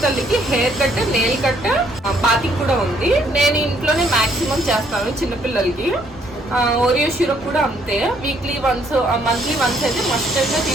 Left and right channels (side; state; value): both; normal; correlation 0.67